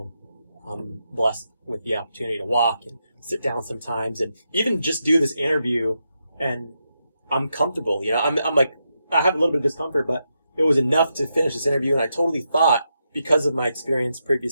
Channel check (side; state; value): both; inverted; correlation -0.84